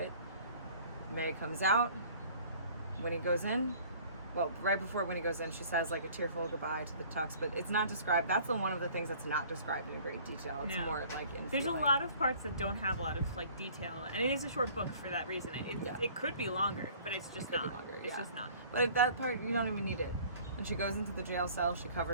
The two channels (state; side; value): inverted; both; correlation -0.51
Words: May comes out. Winnie goes in. Well, right before Winnie goes in, she says like a tearful goodbye to the Tucks, but it's not described. That's one of the things that's not described in great detail. It's more like in There's feeling. a lot of parts that don't have a lot of like detail, and it is a short book for that reason. It could be longer, but it's just not. It's just not. But that part, you don't even need it. When she goes into the jail cell, she